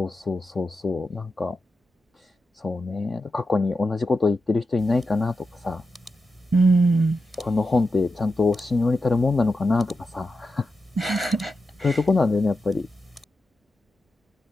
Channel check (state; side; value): normal; both; correlation 0.89